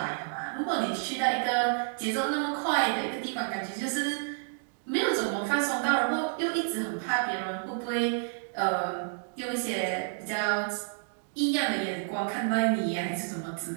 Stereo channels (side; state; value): left; silent; digital silence